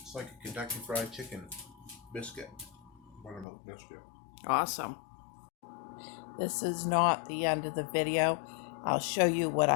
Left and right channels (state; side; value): drops out; right; at 3.5 s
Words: It's like a Kentucky Fried Chicken biscuit. Buttermilk biscuit. Awesome. This is not the end of the video. I'll show you what